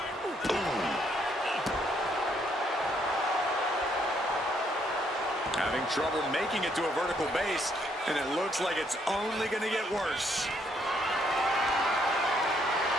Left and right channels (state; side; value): normal; both; correlation 0.71